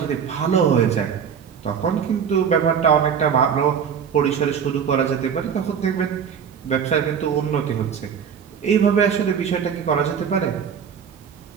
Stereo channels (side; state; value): left; quieter; 7.4 dB